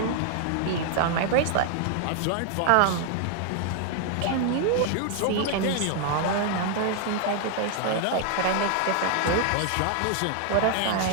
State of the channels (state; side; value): different; both; correlation 0.00